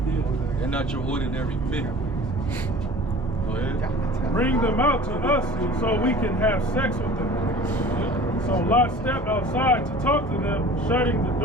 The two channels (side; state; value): both; normal; correlation 0.43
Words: They're not your ordinary men. Go ahead. Bring them out to us so we can have sex with them. So Lot stepped outside to talk to them, shutting the